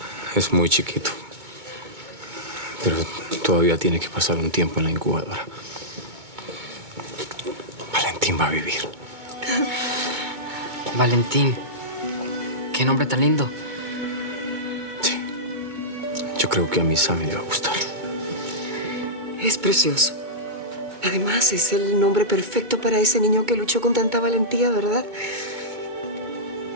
muy chiquito. Pero todavía tiene que pasar un tiempo en la incubadora. Valentín va a vivir. Valentín. Qué nombre tan lindo. Sí. Yo creo que a mi Sammy le va a gustar. Es precioso. Además, es el nombre perfecto para ese niño que luchó con tanta valentía, ¿verdad?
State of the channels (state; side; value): late; left; 2.2 ms